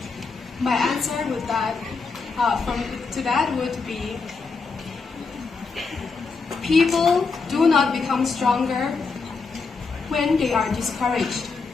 My answer would would be, people do not become stronger when they are discouraged.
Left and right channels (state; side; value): quieter; right; 4.6 dB